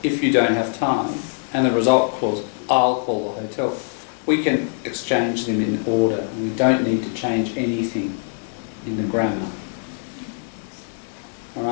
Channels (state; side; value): silent; right; digital silence